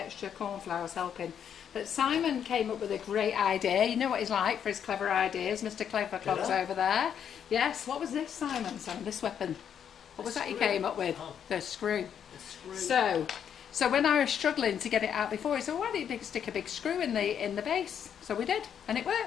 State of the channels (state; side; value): quieter; right; 8.5 dB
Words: extra cornflour is helping. But Simon came up with a great idea. You know what he's like for his clever ideas, Mr. Clever Clogs over there. Yes, what was this, Simon? This weapon. What was that you came up with? Oh. The screw. The screw. So when I was struggling to get it out before, he said, well, why don't you stick a big screw in the base? So we did, and it